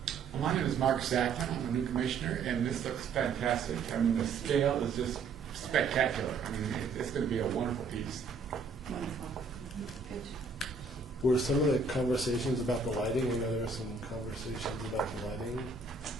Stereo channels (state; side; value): quieter; left; 4.6 dB